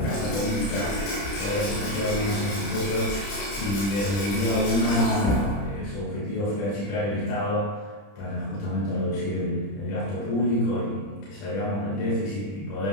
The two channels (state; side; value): late; right; 30 ms